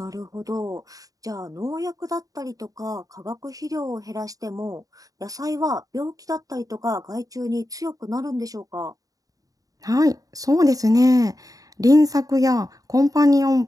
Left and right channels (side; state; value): left; late; 0.17 ms